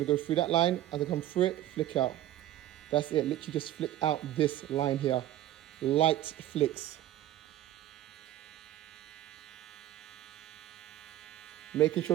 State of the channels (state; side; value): quieter; left; 13.5 dB